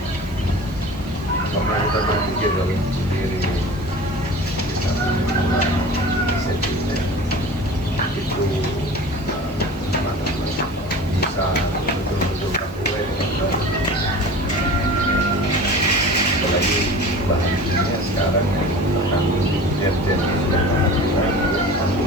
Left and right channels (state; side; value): noise; right; hiss, 26 dB below the sound